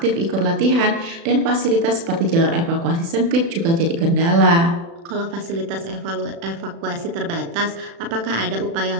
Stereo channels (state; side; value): late; left; 36 ms